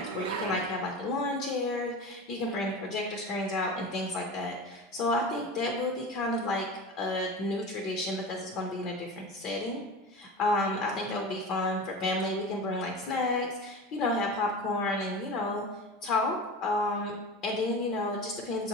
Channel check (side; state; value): both; normal; correlation 0.30